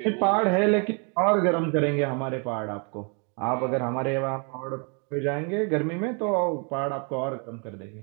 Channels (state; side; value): quieter; left; 36.5 dB